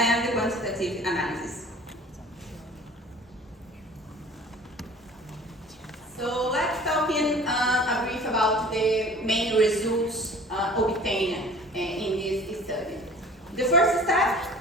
quantitative analysis. So let's talk in a brief about the main results obtained in this study. The first step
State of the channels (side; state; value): both; normal; correlation 0.46